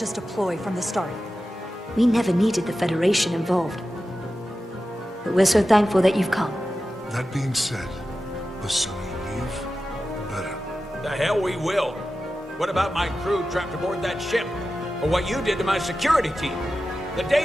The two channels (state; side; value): normal; both; correlation 0.93